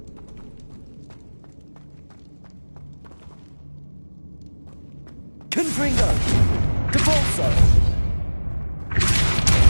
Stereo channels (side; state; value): both; inverted; correlation -1.00